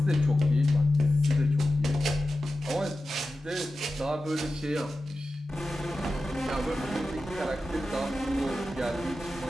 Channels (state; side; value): normal; both; correlation 0.93